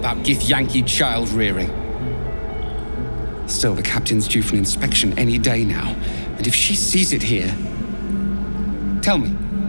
Githyanki child rearing? Still, the captain's due for an inspection any day now, and if she sees it here... Tell me,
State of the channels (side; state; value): both; inverted; correlation -1.00